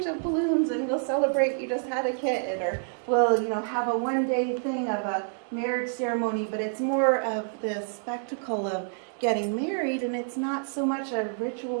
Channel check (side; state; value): left; silent; digital silence